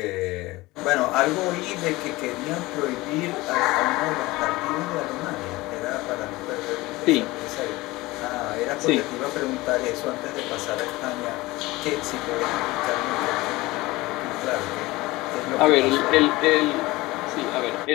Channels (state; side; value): quieter; right; 20.3 dB